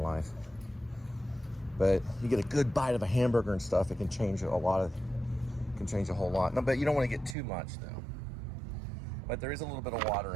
But you get a good bite of a hamburger and stuff, it can change a whole lot. No, but you don't want to get too much though. But there is a little bit of water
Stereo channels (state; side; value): drops out; left; at 7.4 s